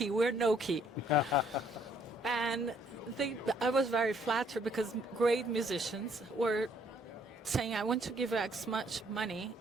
we're no-key. And I was very flattered because great musicians were saying, I want to give X much money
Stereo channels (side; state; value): both; normal; correlation 0.66